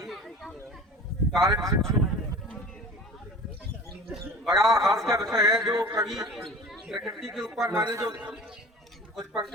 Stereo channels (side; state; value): both; normal; correlation 0.39